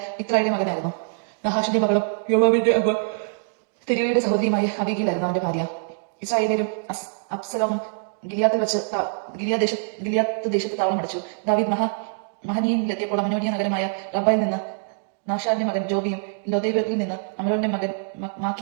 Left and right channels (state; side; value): silent; left; digital silence